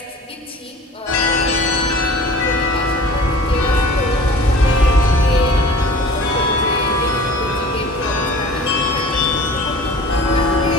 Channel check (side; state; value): both; normal; correlation 0.43